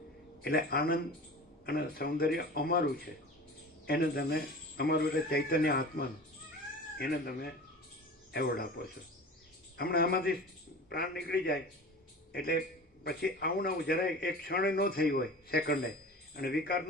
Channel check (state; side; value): normal; both; correlation 0.36